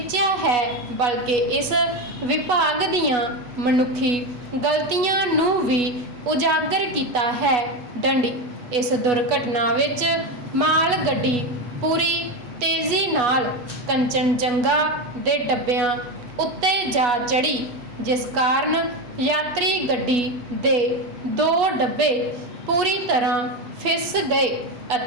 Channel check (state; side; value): late; left; 8.2 ms